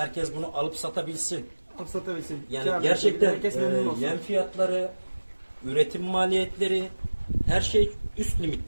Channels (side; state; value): both; inverted; correlation -1.00